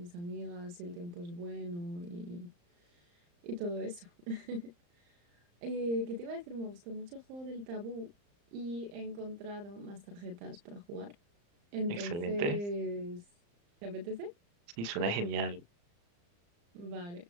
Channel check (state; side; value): late; left; 35 ms